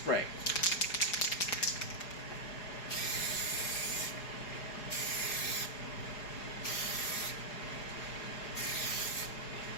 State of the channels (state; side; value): late; right; 4.8 ms